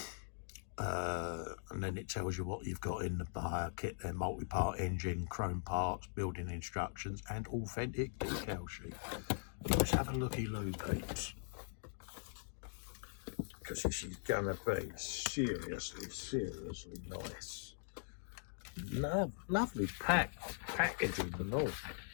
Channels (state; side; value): silent; right; digital silence